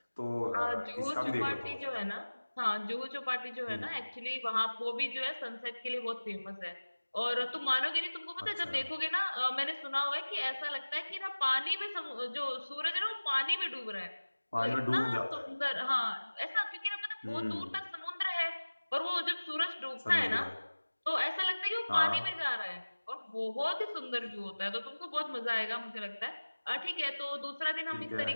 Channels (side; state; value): both; inverted; correlation -1.00